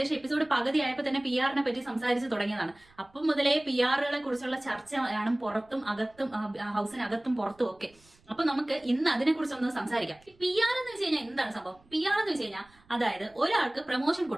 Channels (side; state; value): right; noise; rumble, 30 dB below the sound